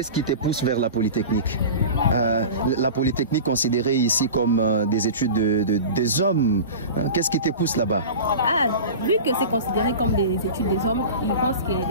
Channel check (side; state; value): both; inverted; correlation -0.33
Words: qui te pousse vers la Polytechnique? La Polytechnique considérée ici comme des études des hommes. Qu'est-ce qui te pousse là-bas? Ah, vu que c'est considéré comme des études des hommes, ils pensent que